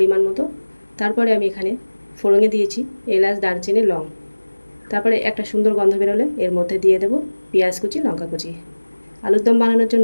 মতো। তারপরে আমি এখানে ফোড়নে দিয়েছি এলাচ, দারচিনি, লং। তারপরে একটা সুন্দর গন্ধ বেরোলে এর মধ্যে দিয়ে দেব পেঁয়াজ কুচি, লঙ্কা কুচি। আলুর দম বানানোর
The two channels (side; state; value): both; inverted; correlation -1.00